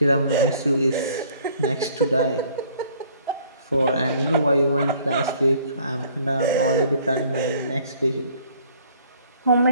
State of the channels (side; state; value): both; inverted; correlation -0.58